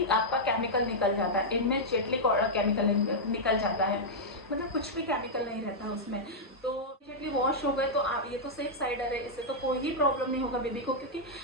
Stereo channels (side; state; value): both; normal; correlation -0.07